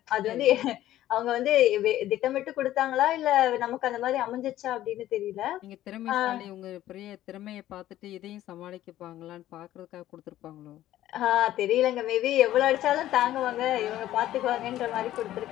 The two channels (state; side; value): quieter; right; 13.6 dB